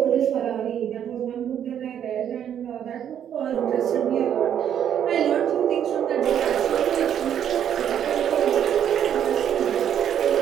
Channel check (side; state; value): left; quieter; 9.4 dB